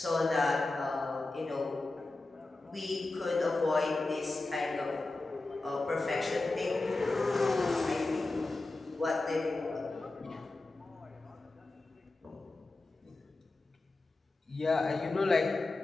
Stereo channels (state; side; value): quieter; right; 3.2 dB